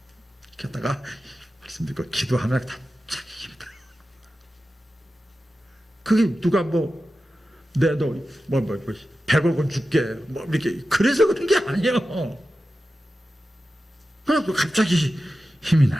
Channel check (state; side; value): normal; both; correlation 0.93